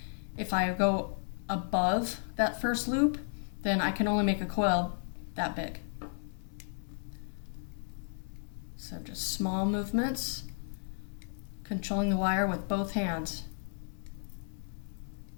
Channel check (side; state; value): right; silent; digital silence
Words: If I go above that first loop, then I can only make a coil that big. So just small movements, controlling the wire with both hands.